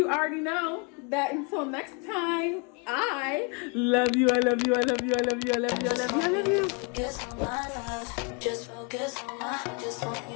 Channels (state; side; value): quieter; right; 33.9 dB